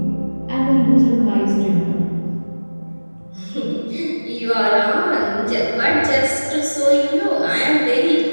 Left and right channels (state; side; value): inverted; both; correlation -1.00